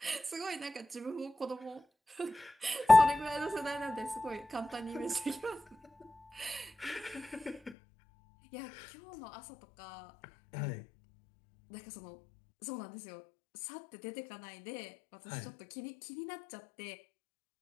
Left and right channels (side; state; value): right; drops out; at 7.8 s